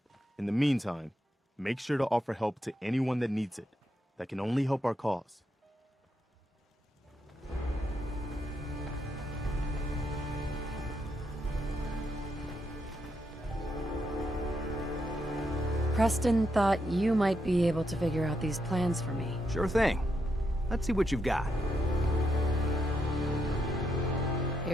In the meantime, make sure to offer help to anyone that needs it. That can only help our cause. Preston thought you might be able to figure out these plans for me. Sure thing. Let's see what you've got.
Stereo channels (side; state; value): both; normal; correlation 0.81